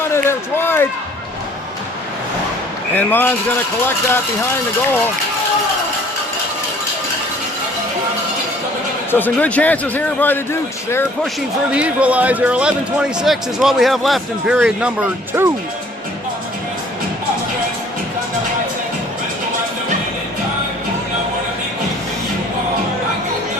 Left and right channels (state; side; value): normal; both; correlation 0.56